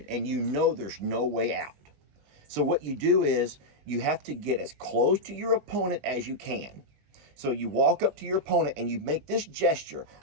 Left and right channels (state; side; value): late; left; 20 ms